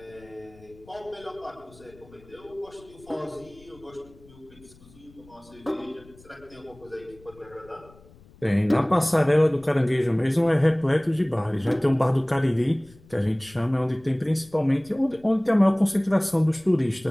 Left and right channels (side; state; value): left; noise; rumble, 25 dB below the sound